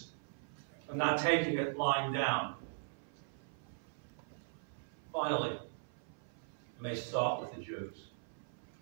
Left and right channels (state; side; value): silent; left; 51 dB below the other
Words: for not taking it lying down. Finally, it may start with the Jews.